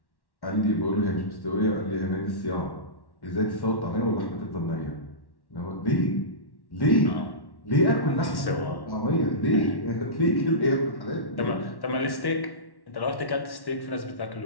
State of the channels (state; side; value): late; right; 1.1 ms